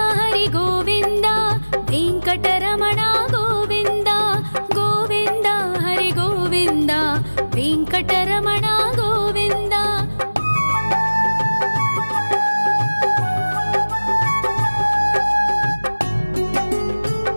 हरि गोविन्द वेङ्कटरमण गोविन्द गोविन्द हरि गोविन्द वेङ्कटरमण गोविन्द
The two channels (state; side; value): inverted; both; correlation -1.00